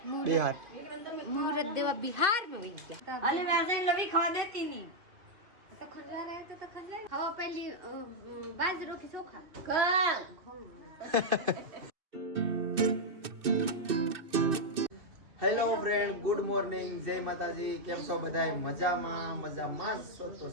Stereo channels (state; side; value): late; left; 2.6 ms